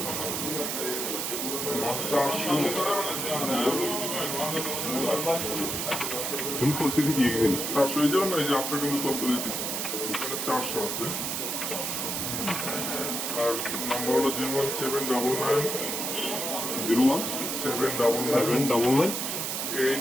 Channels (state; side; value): noise; right; hiss, 2 dB below the sound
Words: 400 পরিস্থিতি কি 400 এই যাবেন না, এই যে আশ্রয় কিন্তু তথ্য দিতেছে এখানে 400 আছে। আর নাম্বার হলো 01799 01799